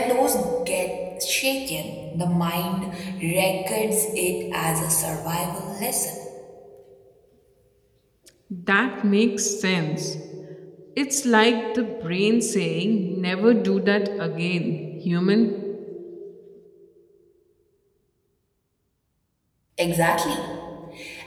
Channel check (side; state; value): both; identical; correlation 1.00